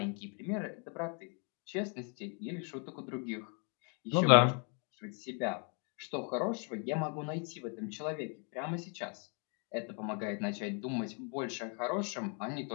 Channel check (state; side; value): quieter; right; 39.1 dB